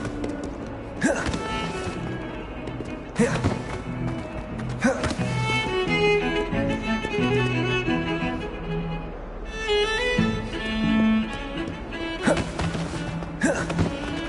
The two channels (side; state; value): both; identical; correlation 1.00